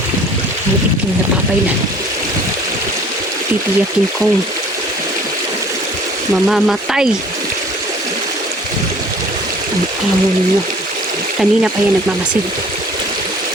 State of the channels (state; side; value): normal; both; correlation 0.51